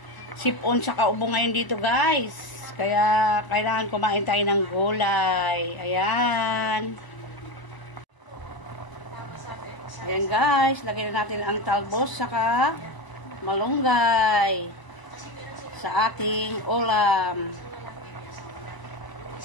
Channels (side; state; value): right; late; 1.0 ms